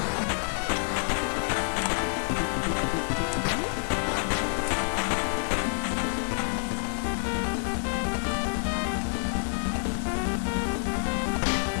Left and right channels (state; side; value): silent; right; digital silence